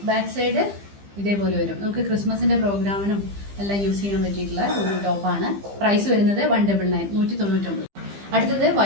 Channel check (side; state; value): left; late; 15 ms